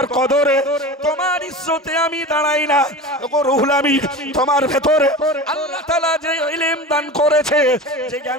কদরে, তোমার ইজ্জতে আমি দাঁড়াই না। ওগো রুহুল আমিন, তোমার ভেতরে আল্লাহ তাআলা যে ইলম দান করেছে, যে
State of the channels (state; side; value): normal; both; correlation 0.31